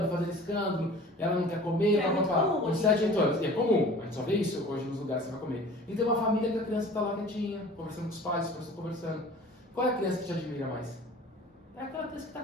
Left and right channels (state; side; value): normal; both; correlation 0.44